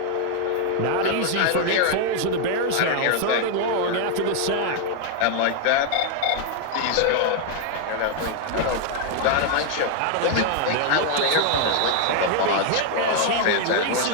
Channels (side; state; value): both; different; correlation 0.00